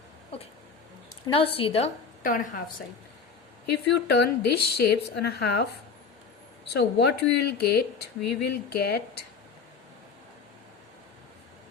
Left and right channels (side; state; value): right; quieter; 5.3 dB